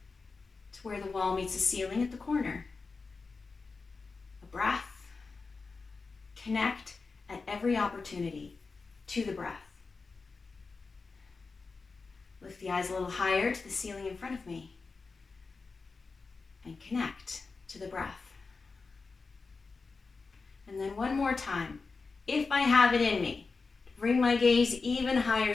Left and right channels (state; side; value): quieter; right; 4.3 dB